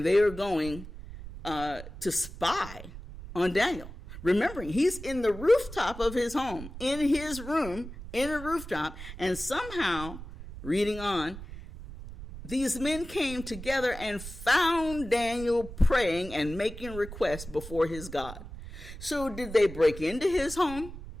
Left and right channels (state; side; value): noise; right; rumble, 12 dB below the sound